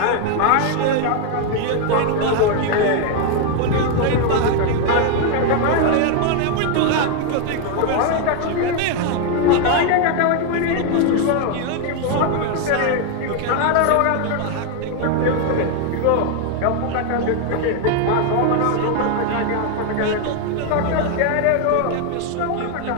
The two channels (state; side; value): different; both; correlation 0.01